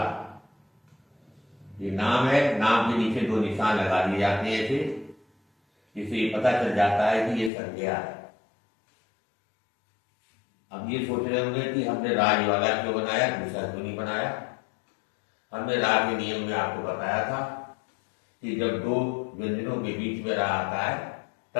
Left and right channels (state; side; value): drops out; right; at 7.5 s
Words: ये नाम है। नाम के नीचे 2 निशान लगा दिए जाते हैं ऐसे, जिससे पता चल जाता है कि ये संज्ञा है। अब ये सोच रहे होंगे कि हमने राज वाला क्यों बनाया, दूसरा क्यों नहीं बनाया। हमने राज के नियम में आपको बताया था कि जब 2 व्यंजनों के बीच में रा आता है